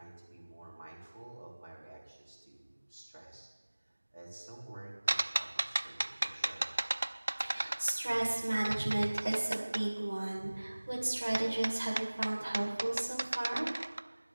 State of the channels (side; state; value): both; inverted; correlation -1.00